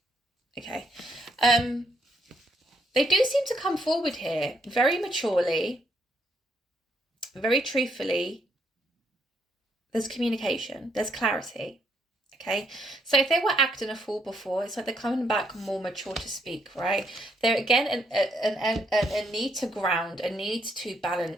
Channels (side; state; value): both; normal; correlation 0.73